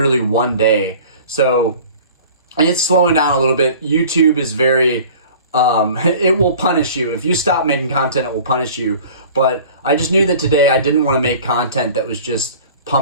one day. So it's slowing down a little bit. YouTube is very, it will punish you. If you stop making content, it will punish you. But I just knew that today I didn't want to make content that was just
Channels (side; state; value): both; inverted; correlation -0.44